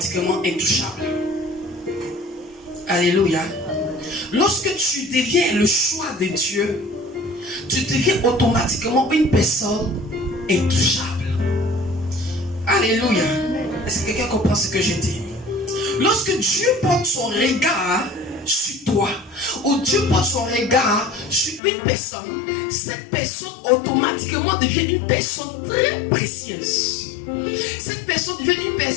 intouchable. Alléluia. Lorsque tu deviens le choix de Dieu, tu deviens automatiquement une personne intouchable. Alléluia. Est-ce que quelqu'un comprend ce que je dis? Lorsque Dieu porte son regard sur toi, où Dieu porte son regard sur une personne, cette personne automatiquement devient une personne très précieuse. Cette personne devient une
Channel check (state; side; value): drops out; right; at 21.6 s